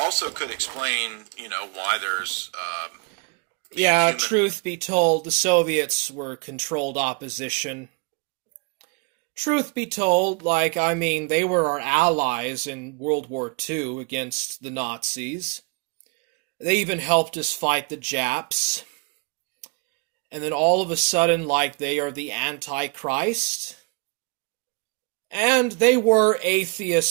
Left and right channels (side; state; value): left; quieter; 31.6 dB